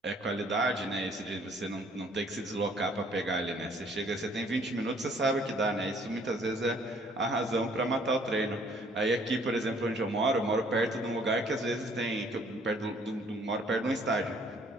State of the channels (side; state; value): both; normal; correlation 0.60